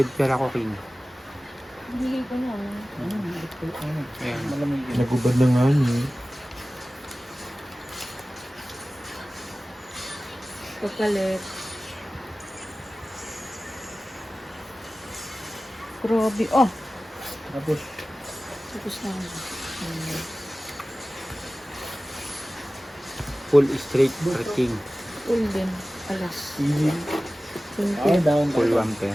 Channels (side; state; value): both; normal; correlation 0.96